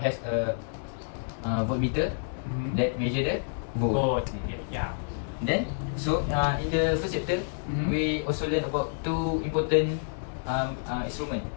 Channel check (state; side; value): silent; right; digital silence